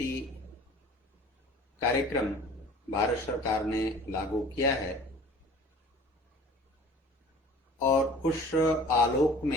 कार्यक्रम भारत सरकार ने लागू किया है और उस आलोक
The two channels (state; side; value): normal; both; correlation 0.45